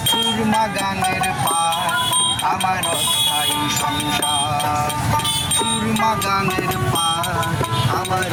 সুরমা গানের পার আমার অস্থায়ী সংসার, সুরমা গানের পার আমার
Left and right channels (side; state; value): both; identical; correlation 1.00